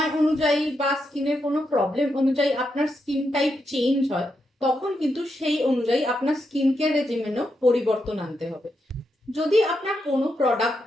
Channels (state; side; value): normal; both; correlation 0.83